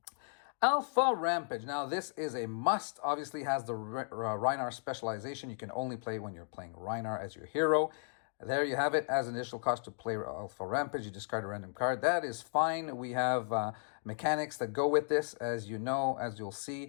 Alpha Rampage. Now, this is a must. Obviously, has the Rhinar specialization. You can only play when you're playing Rhinar as your hero. There you have it. As an initial cost to play Alpha Rampage, you discard a random card. That is fine. We have mechanics that go with this. As you know, as you'll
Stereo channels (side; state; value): right; silent; 54 dB below the other